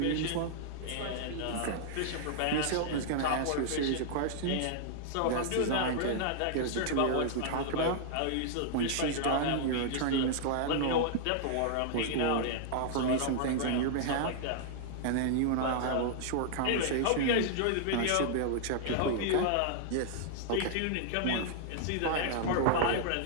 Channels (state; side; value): different; both; correlation -0.01